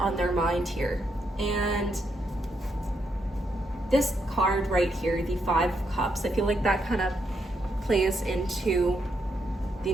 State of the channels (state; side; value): normal; both; correlation 0.79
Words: their mind here. And this card right here, the 5 of Cups, I feel like that kind of plays into the